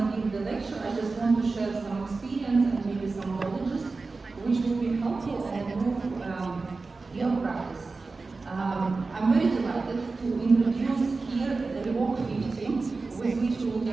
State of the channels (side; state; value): left; quieter; 3.9 dB